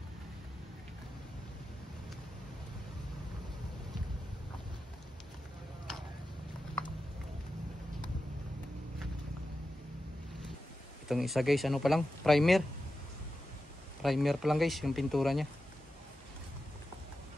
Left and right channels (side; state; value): both; normal; correlation 0.91